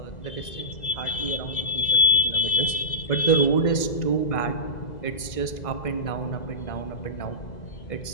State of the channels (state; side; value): late; right; 2.0 ms